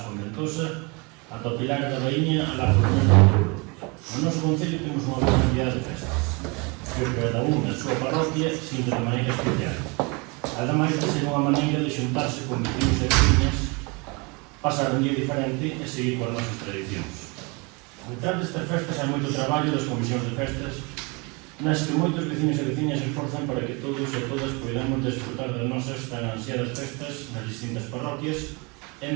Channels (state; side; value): quieter; left; 29.3 dB